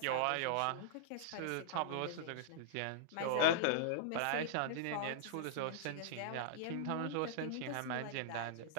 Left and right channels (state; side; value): different; both; correlation -0.02